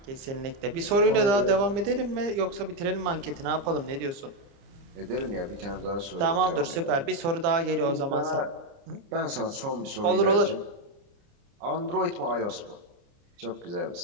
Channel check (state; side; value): late; left; 30 ms